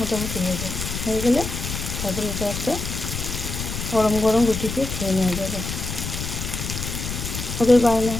হয়ে গেলে তারপরে এটা একটা গরম গরম রুটি দিয়ে খেয়ে নেওয়া যাবে। ওদের বায়না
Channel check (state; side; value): noise; left; rumble, 5 dB below the sound